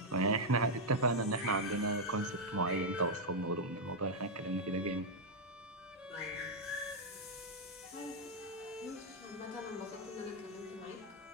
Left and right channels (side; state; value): both; normal; correlation -0.01